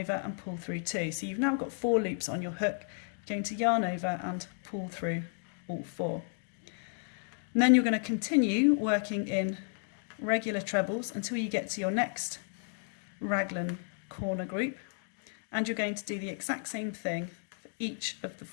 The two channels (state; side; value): silent; right; 56 dB below the other